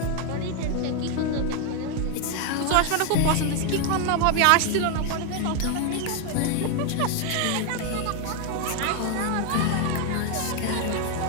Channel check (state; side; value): different; both; correlation 0.01